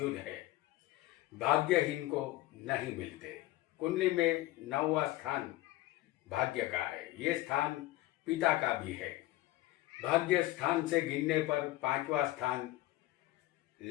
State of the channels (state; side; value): quieter; right; 17.0 dB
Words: है, भाग्यहीन को नहीं मिलते। कुंडली में 9वां स्थान भाग्य का है। ये स्थान पिता का भी है। भाग्य स्थान से गिनने पर 5वां स्थान